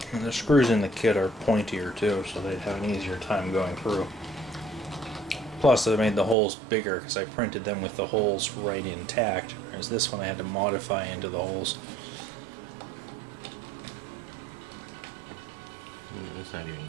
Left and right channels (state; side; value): drops out; left; at 6.4 s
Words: And the screws in the kit are pointier too, so they'd have an easier time going through. Plus, I made the holes bigger because I printed them with the holes right intact, whereas this one I had to modify into the holes. It's not even